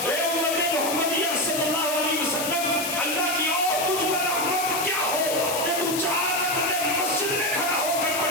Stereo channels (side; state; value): left; noise; hiss, 4 dB below the sound